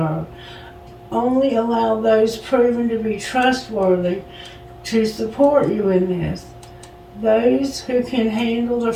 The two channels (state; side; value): identical; both; correlation 1.00